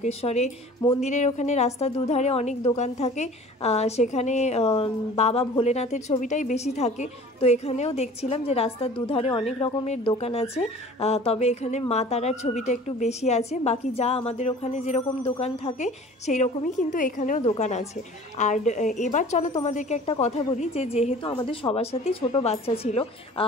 মন্দিরের ওখানে রাস্তার দুধারে অনেক দোকান থাকে, সেখানে বাবা ভোলেনাথের ছবিটাই বেশি থাকে। তো এখানেও দেখছিলাম যে রাস্তার দুধারে অনেক রকমের দোকান আছে, তবে এখানে মা তারার ছবিটা একটু বেশি আছে। বাকি যা আমাদের ওখানে যেরকম দোকান থাকে সেই রকমই কিন্তু এখানেও দোকান আছে। আর এবার চলো তোমাদেরকে একটা কথা বলি, যে যেহেতু আমাদের সবার সাথেই ছোট বাচ্চা ছিল,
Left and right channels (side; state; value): both; normal; correlation 0.45